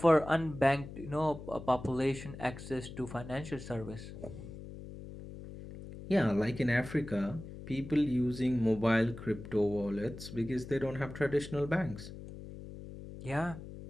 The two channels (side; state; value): left; noise; hum, 12 dB below the sound